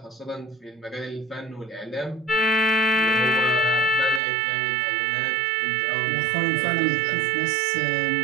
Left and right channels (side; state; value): left; drops out; at 4.2 s